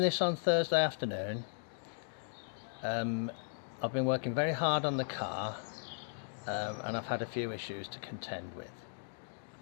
on Thursday afternoon. I've been working very hard on the car and I've had a few issues to contend with.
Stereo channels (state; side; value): silent; right; digital silence